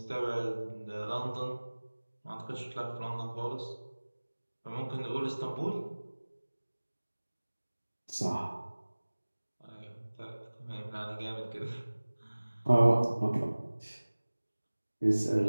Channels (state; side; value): inverted; both; correlation -1.00